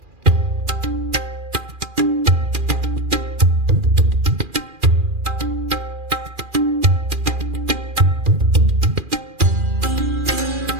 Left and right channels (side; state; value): left; late; 2.4 ms